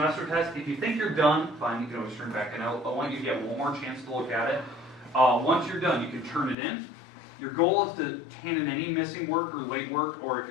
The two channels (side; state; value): right; drops out; at 6.6 s